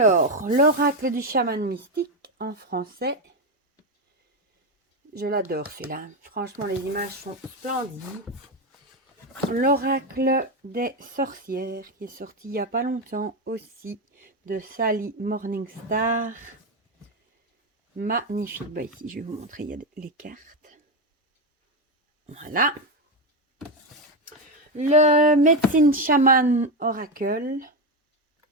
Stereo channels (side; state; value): both; normal; correlation 0.10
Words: l'oracle du chaman mystique en français. Je l'adore celui-là. Franchement, les images sont splendides. L'oracle des sorcières qui est sorti il n'y a pas longtemps aussi de Sally Morningstar. Magnifique. Ici, je vais vous montrer, il y a les cartes. Voilà. Le Médecine Chaman Oracle.